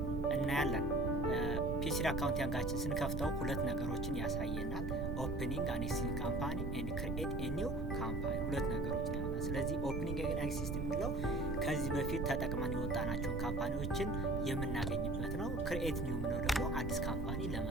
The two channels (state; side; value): noise; right; rumble, 2 dB below the sound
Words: እናያለን። P3 accounting ስንከፍተው ሁለት ነገሮችን ያሳየናል። opening an existing company and create a new company ሁለት ነገሮችን ያሳያል። ስለዚህ opening an existing የሚለው ከዚህ በፊት ተጠቅመን የወጣናቸውን ካምፓኒዎችን የምናገኝበት ነው። create new የሚለው ደግሞ አዲስ ካምፓኒ